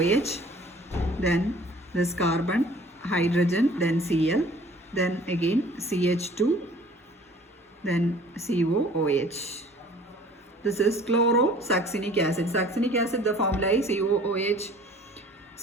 then this carbon, hydrogen, then Cl, then again CH2, then COOH. This is chlorosuccinic acid. Succinic acid, the formula is COOH,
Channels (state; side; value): normal; both; correlation 0.51